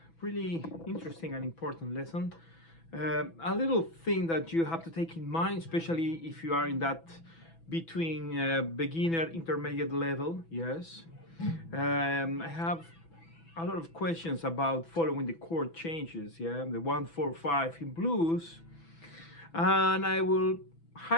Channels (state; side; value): late; right; 6.0 ms